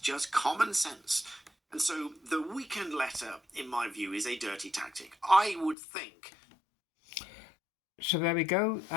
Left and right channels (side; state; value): right; drops out; at 5.8 s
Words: common sense. And so the weekend letter, in my view, is a dirty tactic. I would think. So there we go.